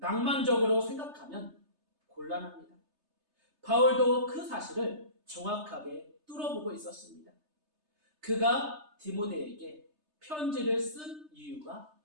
생각하면 곤란합니다. 바울도 그 사실을 정확하게 뚫어보고 있었습니다. 그가 디모데에게 편지를 쓴 이유가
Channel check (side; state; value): left; late; 3.3 ms